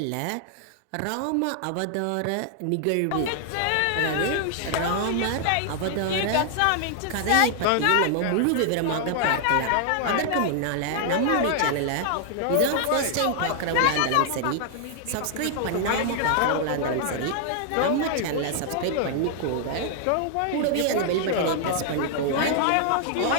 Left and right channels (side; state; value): both; different; correlation 0.00